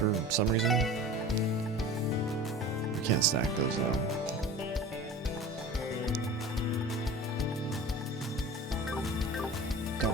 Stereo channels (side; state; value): both; normal; correlation 0.37